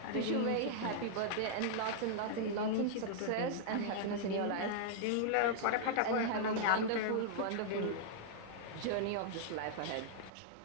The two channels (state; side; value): different; both; correlation -0.01